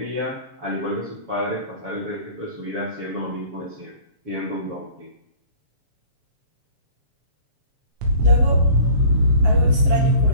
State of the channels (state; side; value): late; left; 7.5 ms